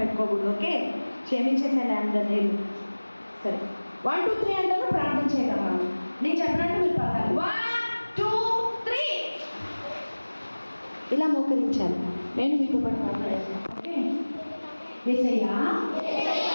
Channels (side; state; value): both; inverted; correlation -1.00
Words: ఓకే, క్షమించేసాను అందరినీ. సరే, 1 2 3 అంటారు, ప్రార్థన చేయగలమా? నేను చెప్పినట్టు మీరు పలకాలి. 1 2 3 ఇలా మోకరించాలి. నేను మీతో పాటు మాట్లాడేస్తాను. ఓకే? యేసయ్యా,